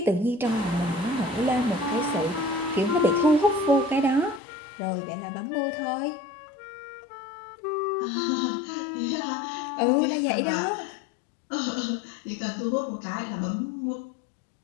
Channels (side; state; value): right; drops out; at 4.4 s